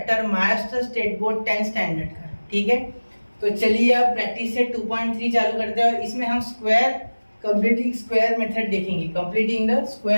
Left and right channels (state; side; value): inverted; both; correlation -1.00